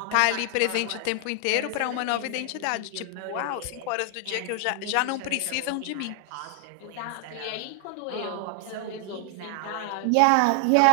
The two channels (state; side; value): different; both; correlation 0.00